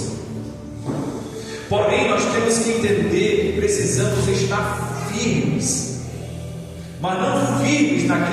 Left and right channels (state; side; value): identical; both; correlation 1.00